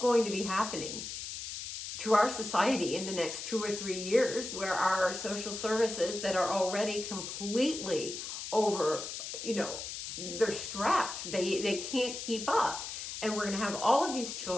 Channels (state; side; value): noise; left; hiss, 7 dB below the sound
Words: to be happening to our society in the next 2 or 3 years, where our social services that are already completely over, they're strapped. They can't keep up. And we're going to have all of these